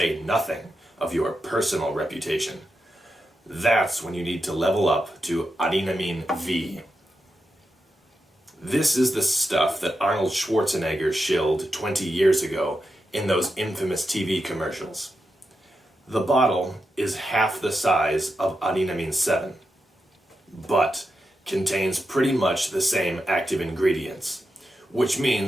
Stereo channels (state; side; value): normal; both; correlation 0.88